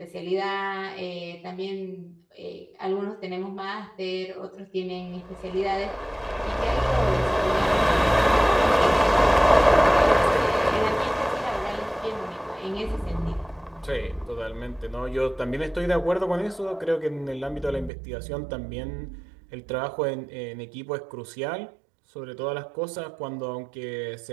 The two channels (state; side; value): drops out; left; at 17.9 s